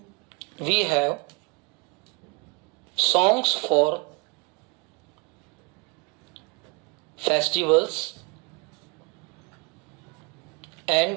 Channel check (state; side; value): quieter; left; 30.5 dB